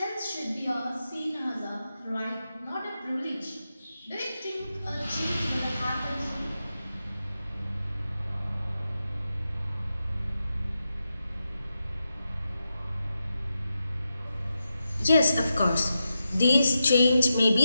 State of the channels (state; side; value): inverted; both; correlation -0.89